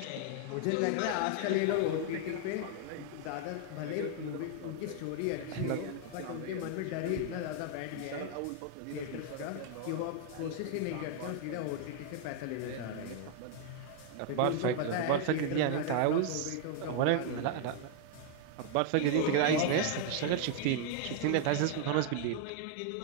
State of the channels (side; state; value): both; different; correlation 0.00